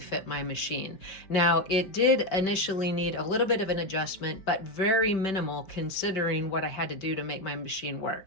my machine. Now, it did initially need a little bit of an adjustment, but very minimal considering what I had to do to make my machine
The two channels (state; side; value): late; right; 5.2 ms